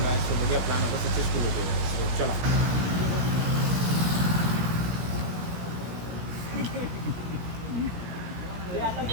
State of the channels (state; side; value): late; left; 17 ms